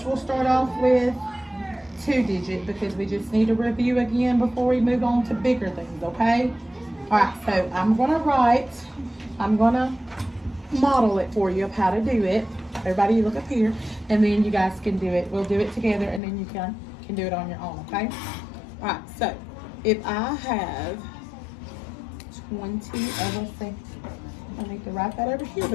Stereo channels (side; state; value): right; drops out; at 16.2 s